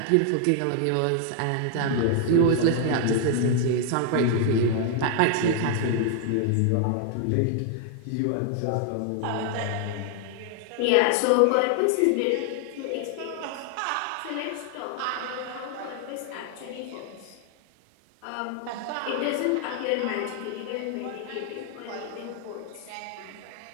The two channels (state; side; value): different; both; correlation 0.00